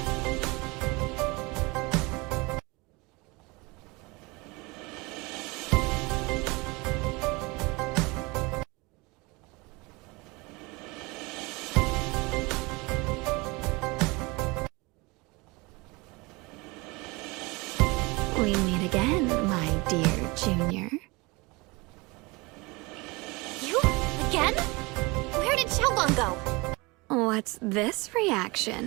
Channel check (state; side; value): quieter; left; 25.4 dB